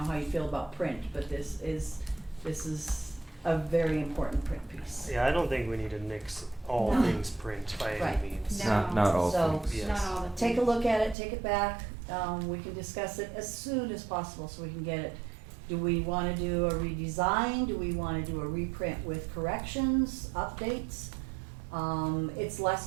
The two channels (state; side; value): drops out; left; at 11.2 s